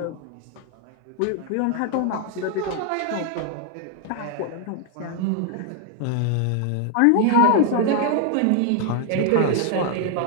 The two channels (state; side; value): different; both; correlation 0.00